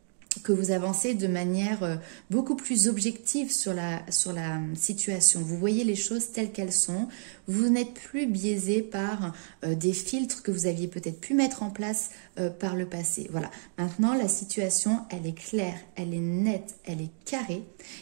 vous avancez de manière beaucoup plus objective sur la situation. Vous voyez les choses telles qu'elles sont. Vous n'êtes plus biaisé par des filtres que vous aviez peut-être pu mettre en place par le passé. Voilà. Maintenant, la situation, elle est claire, elle est nette, elle est carrée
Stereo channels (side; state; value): left; silent; digital silence